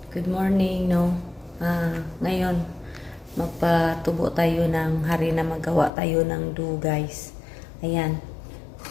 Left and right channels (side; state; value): right; drops out; at 5.9 s